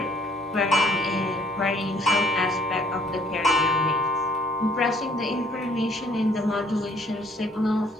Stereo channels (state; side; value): normal; both; correlation 0.62